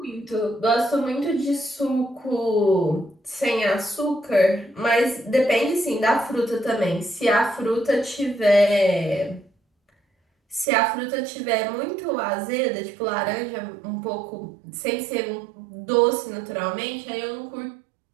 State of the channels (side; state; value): left; drops out; at 10.7 s